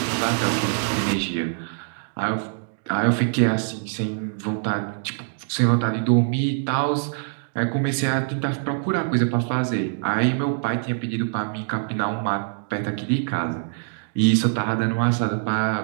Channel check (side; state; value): left; silent; digital silence